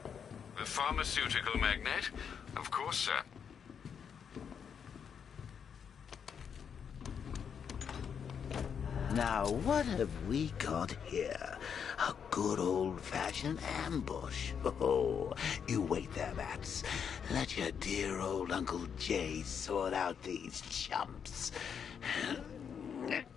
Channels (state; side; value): quieter; right; 7.3 dB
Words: The pharmaceutical magnate? Of course, sir. Now, what have we got here? A good old-fashioned ambush. Oh, you wait there, Bats. Let your dear old Uncle Jay sort out these chumps.